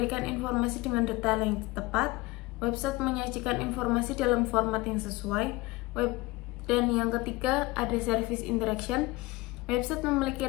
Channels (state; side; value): quieter; right; 21.7 dB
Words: informasi dengan detail yang tepat, website menyajikan informasi dalam format yang sesuai, dan yang ketiga ada service interaction. Website memiliki